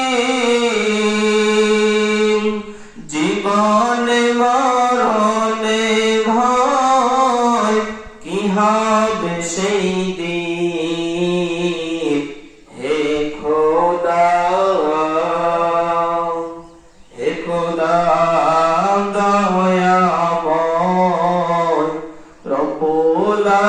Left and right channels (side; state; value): both; identical; correlation 1.00